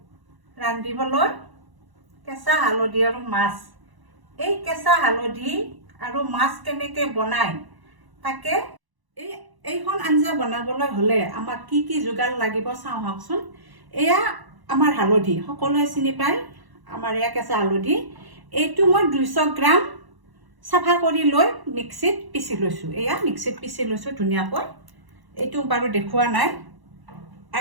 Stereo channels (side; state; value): left; late; 1.0 ms